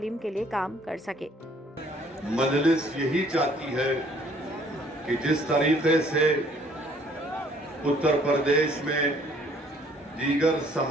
के लिए काम कर सके। मजलिस यही चाहती है कि जिस तरीके से उत्तर प्रदेश में दीगर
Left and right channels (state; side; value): normal; both; correlation 0.60